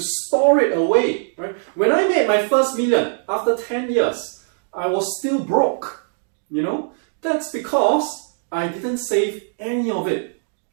store it away. Right? When I made my first million after 10 years, I was still broke. That's because I didn't save any of it.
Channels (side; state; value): left; silent; 65 dB below the other